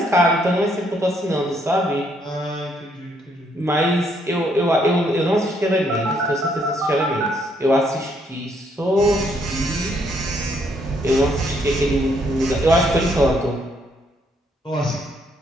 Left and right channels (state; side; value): normal; both; correlation 0.71